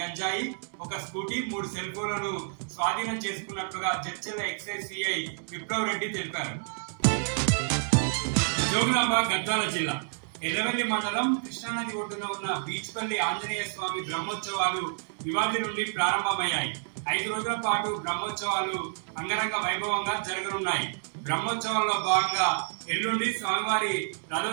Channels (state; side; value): silent; left; digital silence